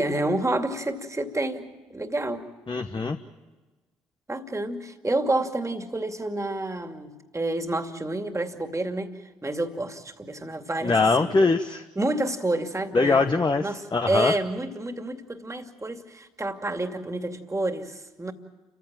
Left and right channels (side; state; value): both; normal; correlation 0.77